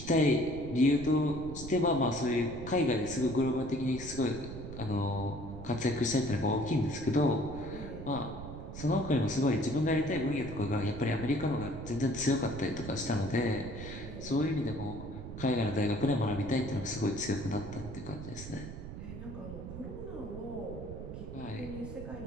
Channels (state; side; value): noise; right; rumble, 10 dB below the sound